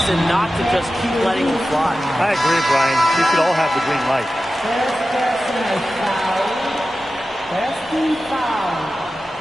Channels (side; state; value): both; normal; correlation 0.94